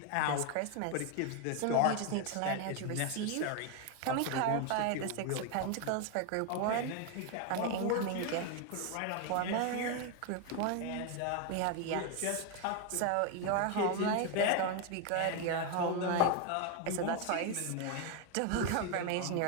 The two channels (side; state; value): both; different; correlation 0.01